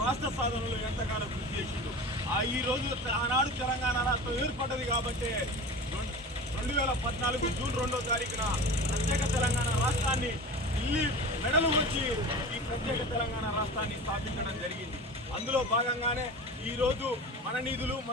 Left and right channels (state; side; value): normal; both; correlation 0.33